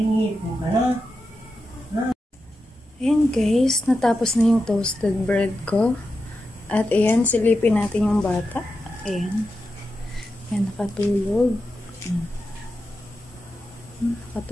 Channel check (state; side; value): normal; both; correlation 0.89